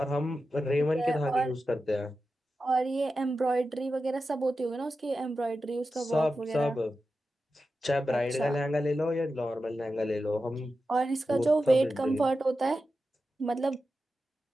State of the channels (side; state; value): both; normal; correlation 0.91